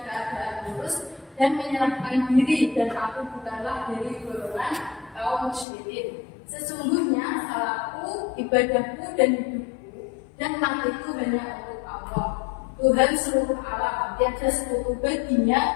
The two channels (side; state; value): right; drops out; at 5.7 s